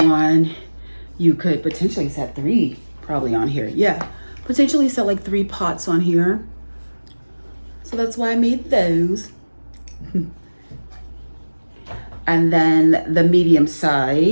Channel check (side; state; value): both; inverted; correlation -1.00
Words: you could potentially set 3 probably on here. Yeah, potentially set like 3 pots on here. So that's why I made those. And then the medium